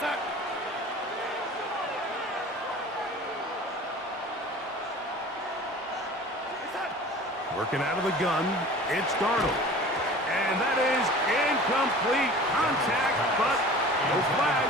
Working out of the gun, it's Darnold. And that is incomplete contact, but No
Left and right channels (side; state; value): both; normal; correlation 0.41